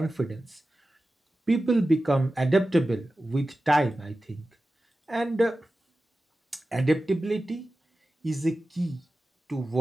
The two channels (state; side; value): normal; both; correlation 0.94